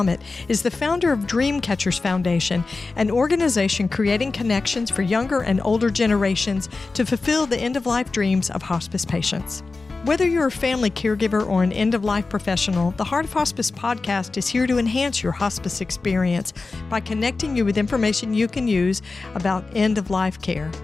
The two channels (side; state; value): right; quieter; 3.8 dB